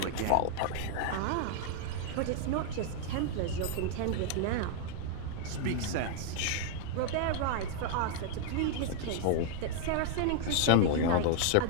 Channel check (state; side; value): different; both; correlation 0.00